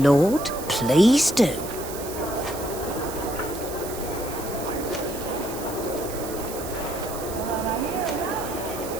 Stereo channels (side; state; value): right; noise; hiss, 11 dB below the sound